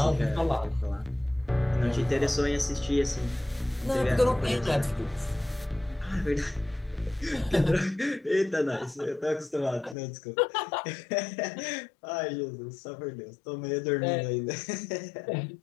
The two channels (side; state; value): right; drops out; at 10.0 s